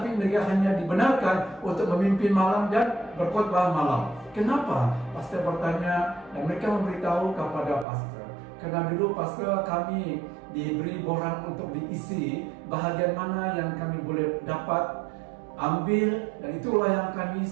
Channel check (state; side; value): drops out; left; at 7.9 s